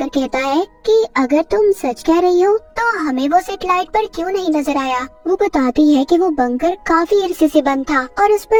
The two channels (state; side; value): identical; both; correlation 1.00